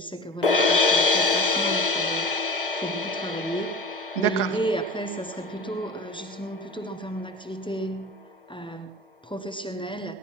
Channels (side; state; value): both; normal; correlation 0.35